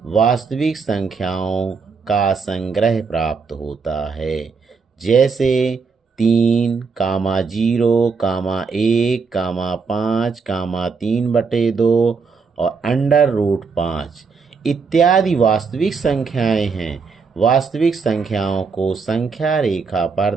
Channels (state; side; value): quieter; left; 5.1 dB